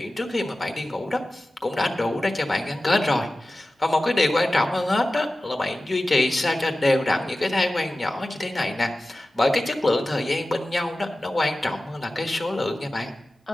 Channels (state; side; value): normal; both; correlation 0.95